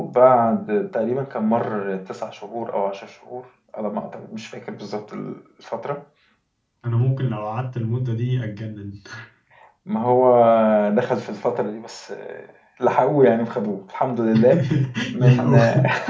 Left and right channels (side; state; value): both; identical; correlation 1.00